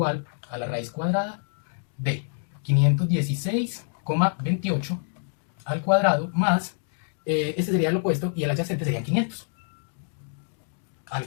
a la raíz cuadrada de 516,28 al cuadrado más, este sería el opuesto y el adyacente sería 500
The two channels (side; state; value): right; silent; 61 dB below the other